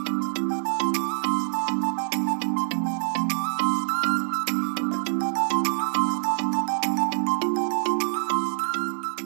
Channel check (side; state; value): left; silent; 61 dB below the other